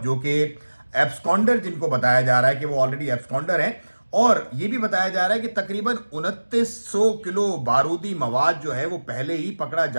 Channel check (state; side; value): inverted; both; correlation -1.00